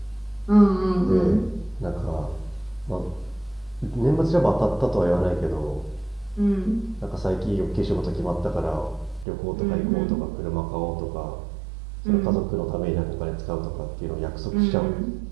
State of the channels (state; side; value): drops out; left; at 9.2 s